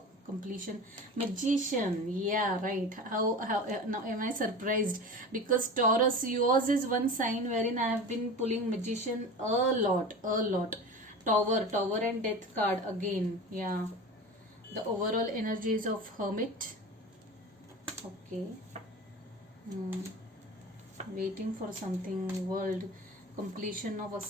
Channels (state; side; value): normal; both; correlation 0.32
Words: completion. Magician, yeah, right. How now am I surprised? Because Taurus, yours is one sign wherein I have been pulling Magician a lot. Tower and Death card again. Yeah, the overall energies of Hermit. Okay. Waiting for something, world, completion of a